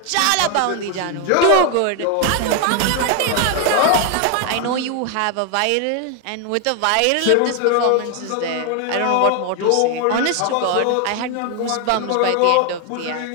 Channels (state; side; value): different; both; correlation 0.01